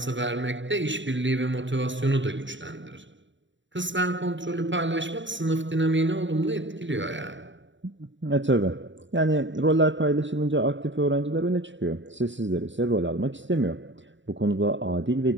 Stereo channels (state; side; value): late; left; 0.54 ms